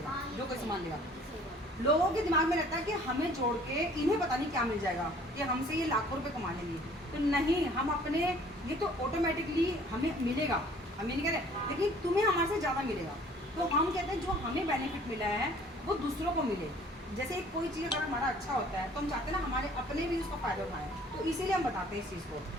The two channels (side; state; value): both; normal; correlation 0.54